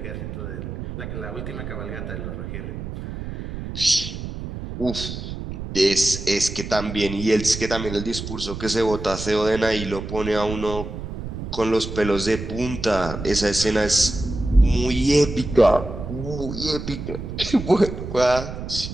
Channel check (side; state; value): right; noise; rumble, 8 dB below the sound